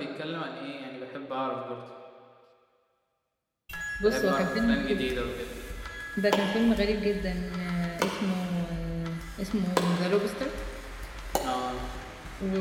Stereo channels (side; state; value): both; identical; correlation 1.00